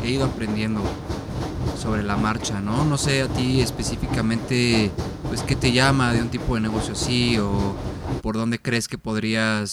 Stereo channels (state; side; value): identical; both; correlation 1.00